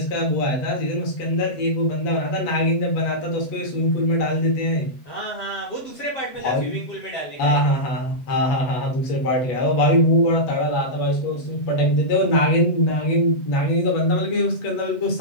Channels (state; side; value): late; right; 7.8 ms